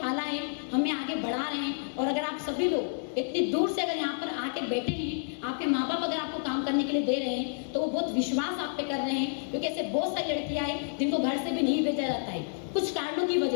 है, हमें आगे बढ़ा रहे हैं। और अगर आप सभी लोग इतनी दूर से अगर यहाँ पर आके बैठे हैं, आपके माँ बाप अगर आपको काम करने के लिए दे रहे हैं तो वो बहुत विश्वास आप पे कर रहे हैं, क्योंकि ऐसे बहुत सारी लड़कियां हैं जिनको घर से भी नहीं भेजा जाता है कुछ कारणों की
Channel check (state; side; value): silent; right; digital silence